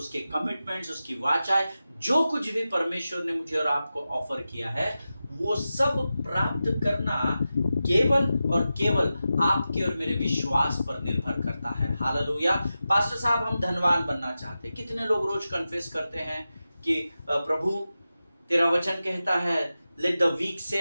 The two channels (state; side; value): inverted; both; correlation -0.92